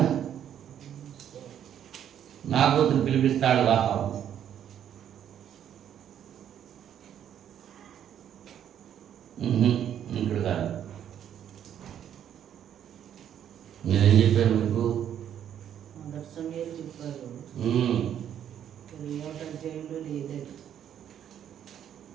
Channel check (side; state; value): left; quieter; 9.8 dB